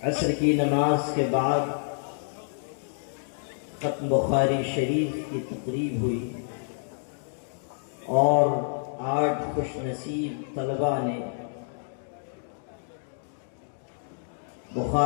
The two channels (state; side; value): silent; right; digital silence